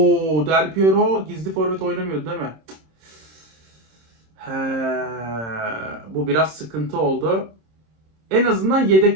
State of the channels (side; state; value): left; late; 26 ms